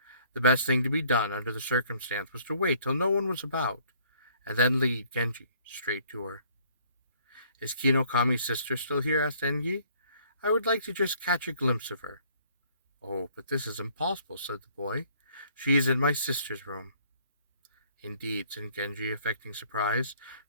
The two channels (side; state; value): both; inverted; correlation -0.60